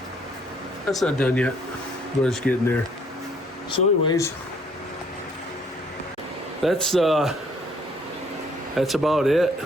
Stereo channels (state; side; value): normal; both; correlation 0.62